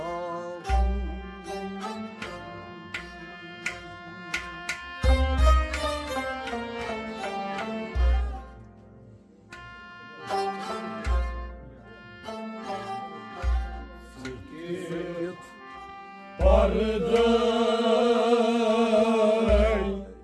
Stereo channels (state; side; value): identical; both; correlation 1.00